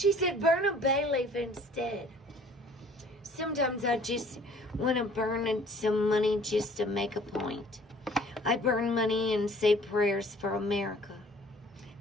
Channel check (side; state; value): both; normal; correlation 0.53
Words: said burn a bay leaf instead. Sometimes I just want to burn some money just to make a point. I burn money and say prayers for America